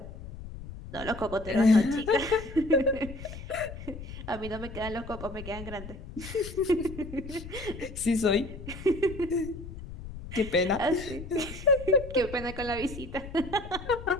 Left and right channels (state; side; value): noise; left; rumble, 11 dB below the sound